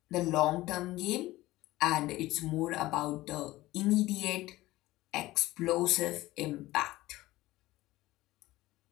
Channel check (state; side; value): quieter; right; 17.7 dB